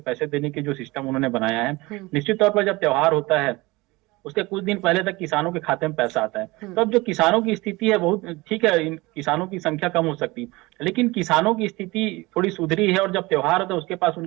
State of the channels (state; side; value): quieter; left; 22.1 dB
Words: देने के जो सिस्टम उन्होंने बनाया है, निश्चित तौर पर जब त्योहार होता है उसके कुछ दिन पहले तक किसानों के खाते में पैसा आता है। तो अब जो किसानों की स्थिति है बहुत ठीक है, इन किसानों की संख्या कम हो सकती है लेकिन किसानों की स्थिति थोड़ी सुधरी है और जब त्योहार होता है उसके पास